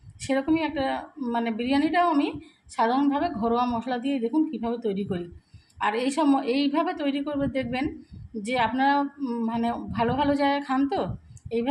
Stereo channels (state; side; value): identical; both; correlation 1.00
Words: সেরকমই একটা বিরিয়ানিটাও আমি সাধারণভাবে ঘরোয়া মশলা দিয়ে দেখুন কীভাবে তৈরি করি। আর এইভাবে তৈরি করবে, দেখবেন যে আপনারা ভালো ভালো জায়গায় খান, তো